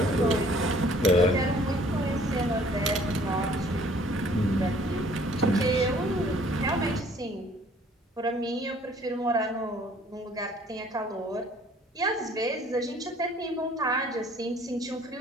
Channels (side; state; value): both; normal; correlation 0.57